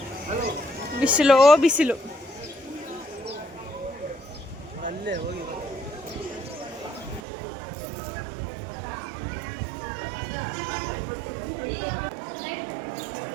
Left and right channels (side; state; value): left; drops out; at 7.2 s